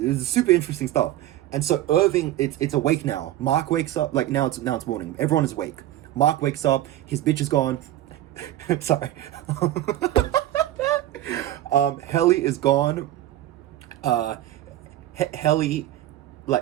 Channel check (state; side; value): quieter; left; 13.8 dB